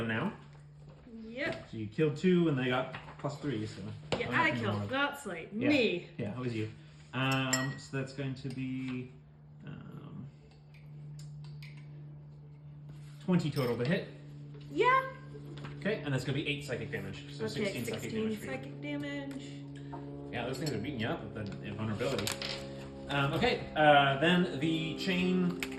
now. Yep. So you killed 2, and they got +3. So Yeah, I'm I not killed. gonna- That's like Yeah. me. Yeah, it was you. So that's going to be 20 total to hit. Yeah. Okay, and that's going to be 8 psychic damage. So Okay, 16 psychic damage for you. psychic damage. Yeah, those things are beating you up with the invulnerability. Okay, then the chain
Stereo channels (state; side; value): identical; both; correlation 1.00